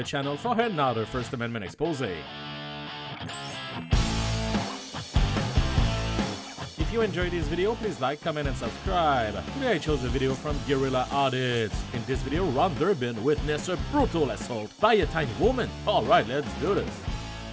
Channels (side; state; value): both; identical; correlation 1.00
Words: channel for another First Amendment expose. If you enjoyed this video, please like, comment, and subscribe. Today I chose a video from Guerrilla Audits. In this video, Durbin witnessed a brutal assault by a tiny woman. Alright, let's do this.